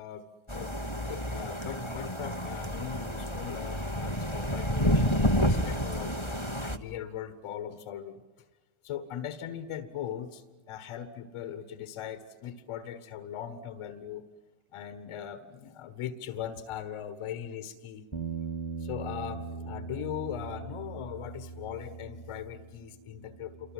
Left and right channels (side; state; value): right; late; 1.3 ms